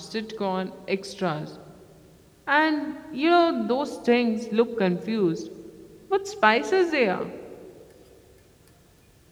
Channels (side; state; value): both; identical; correlation 1.00